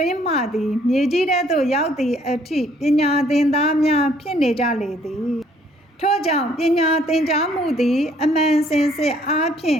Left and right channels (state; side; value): normal; both; correlation 0.63